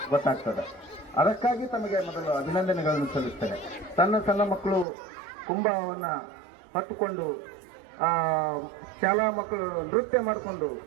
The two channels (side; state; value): left; drops out; at 4.9 s